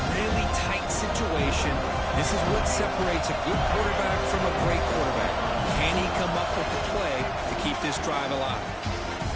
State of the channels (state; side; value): identical; both; correlation 1.00